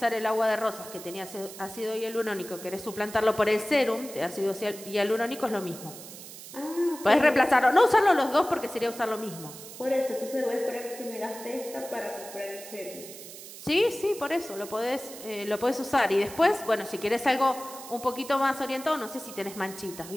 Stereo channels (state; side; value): noise; right; hiss, 14 dB below the sound